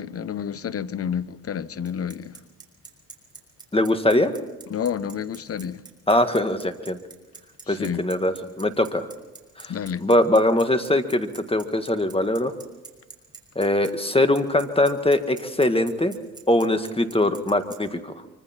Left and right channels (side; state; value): both; normal; correlation 0.55